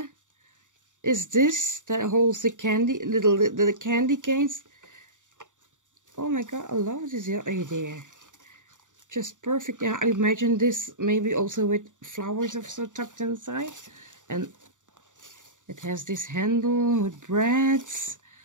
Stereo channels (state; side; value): late; left; 0.86 ms